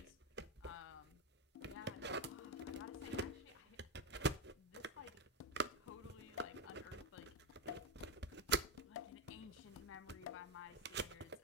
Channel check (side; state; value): both; normal; correlation 0.09